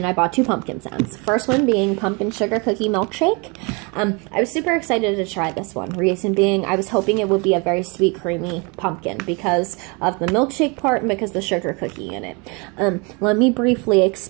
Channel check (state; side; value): quieter; left; 30.5 dB